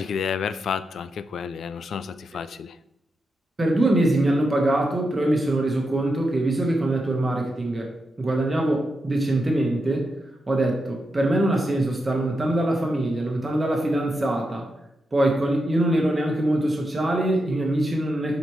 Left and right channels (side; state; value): both; normal; correlation 0.86